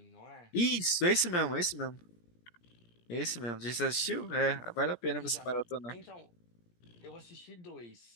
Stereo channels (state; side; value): late; right; 17 ms